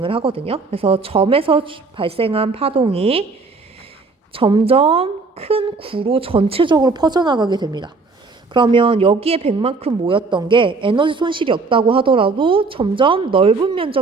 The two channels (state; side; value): quieter; left; 4.1 dB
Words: 하거든요. 그래서 점에서 발생한 파동이 점점 큰 구로 전체적으로 퍼져나가게 됩니다. 그러면 여기에 100만큼 모였던 게 에너지 손실이 없다고 하더라도 점점 넓은